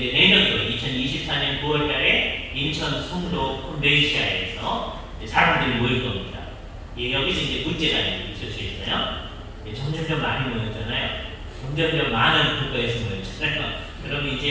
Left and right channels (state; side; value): identical; both; correlation 1.00